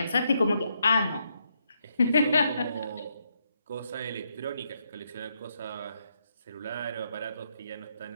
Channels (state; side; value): inverted; both; correlation -0.78